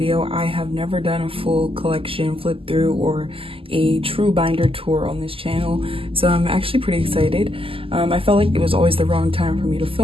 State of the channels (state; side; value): late; left; 0.26 ms